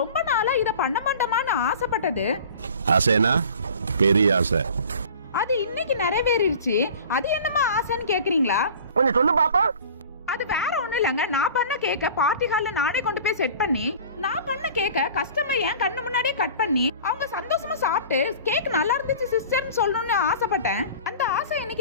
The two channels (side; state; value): both; inverted; correlation -0.43